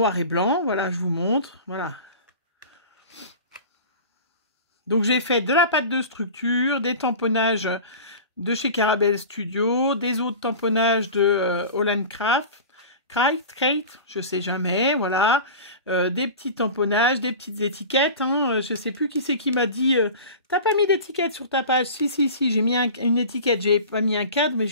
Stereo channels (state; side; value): inverted; both; correlation -0.35